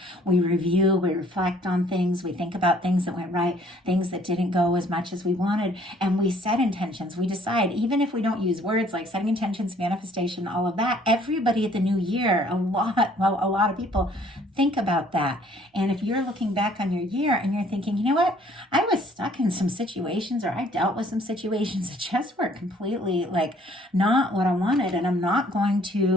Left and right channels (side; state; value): both; normal; correlation 0.59